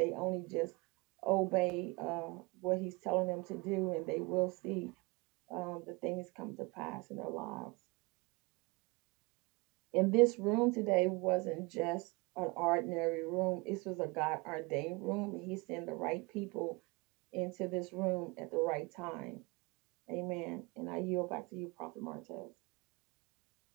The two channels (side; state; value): left; quieter; 26.7 dB